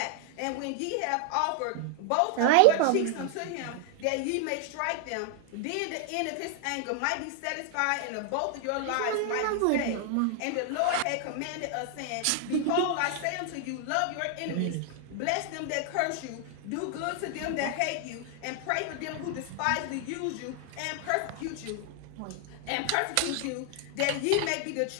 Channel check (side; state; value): both; different; correlation 0.00